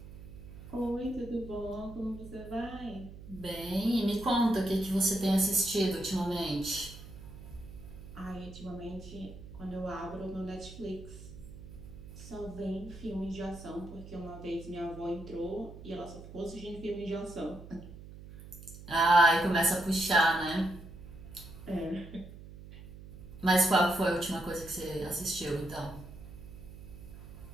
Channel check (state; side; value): noise; right; hum, 15 dB below the sound